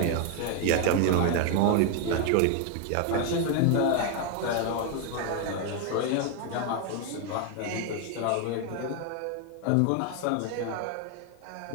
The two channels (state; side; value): different; both; correlation 0.01